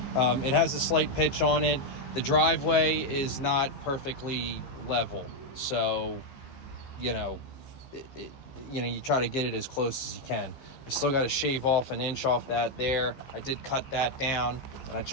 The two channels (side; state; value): right; late; 15 ms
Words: It has a slight pitch on it. The driveway is not perfectly level, so you try to get it as close as you can. I still got to shave off an inch off that there. I did cut that down, and I'm